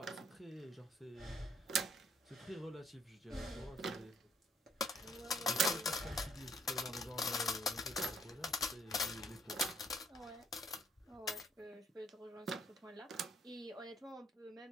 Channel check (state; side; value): normal; both; correlation 0.66